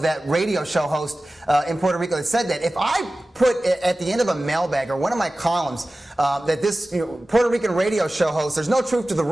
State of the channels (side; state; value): both; normal; correlation 0.96